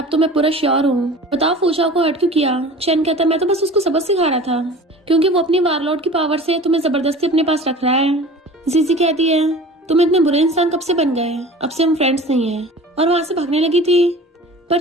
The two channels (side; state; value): both; normal; correlation 0.40